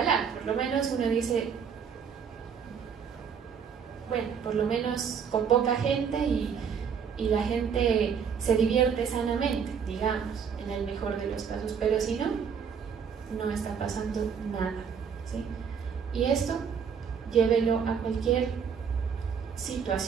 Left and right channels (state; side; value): quieter; left; 6.9 dB